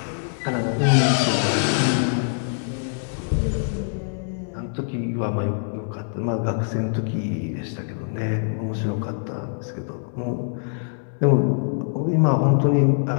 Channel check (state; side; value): silent; right; digital silence